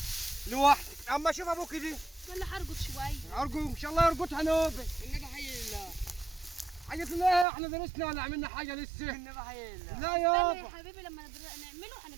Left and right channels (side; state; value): left; drops out; at 7.5 s